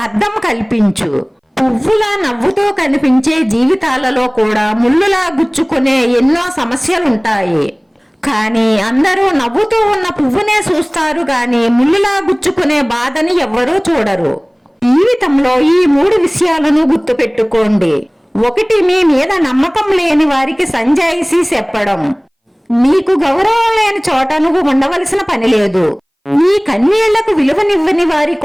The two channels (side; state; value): both; identical; correlation 1.00